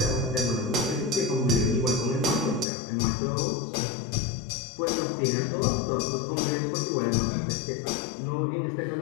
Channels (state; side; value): drops out; right; at 2.7 s